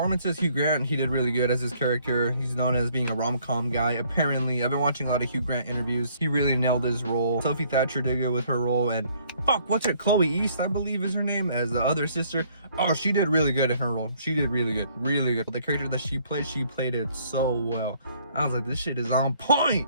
Hugh Grant, he did really good as his character. He's known as being a rom-com guy. Apparently, I've been watching a lot of Hugh Grant interviews. He really nailed his role. Sophie Thatcher did good with her role, and what's it? Chloe East, I believe is her name, as the other sister. Oh, she did really good in her role. She did really good, really good. The character that she played it so well. I was like, this shit is on point.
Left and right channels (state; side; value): inverted; both; correlation -0.63